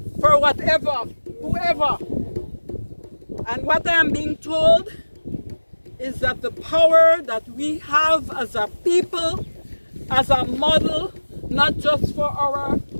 for whatever, whoever. And what I am being told is that the power that we have as a people, as a model, not just for our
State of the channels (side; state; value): both; inverted; correlation -1.00